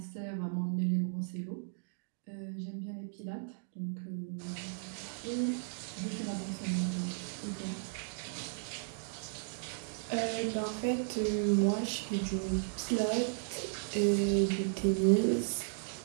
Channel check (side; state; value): left; silent; digital silence